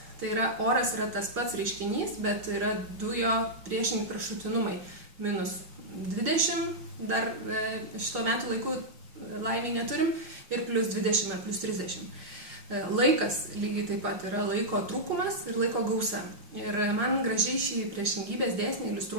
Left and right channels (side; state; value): left; late; 5.0 ms